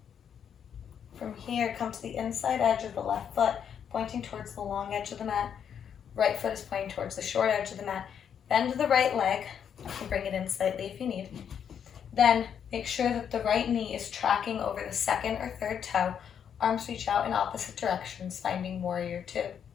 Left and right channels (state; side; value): quieter; right; 8.2 dB